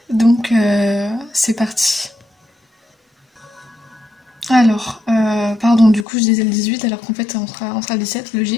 Donc c'est parti. Alors, pardon, du coup je disais le 18 alors qu'en fait on sera le 17,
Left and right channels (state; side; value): drops out; right; at 6.1 s